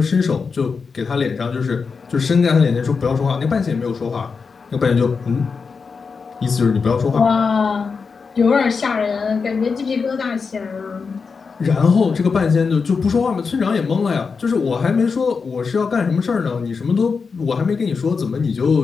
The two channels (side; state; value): right; quieter; 5.2 dB